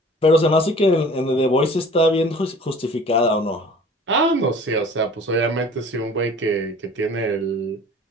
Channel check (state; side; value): normal; both; correlation 0.47